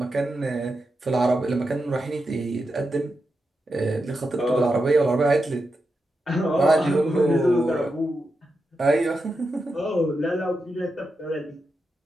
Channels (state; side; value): normal; both; correlation 0.88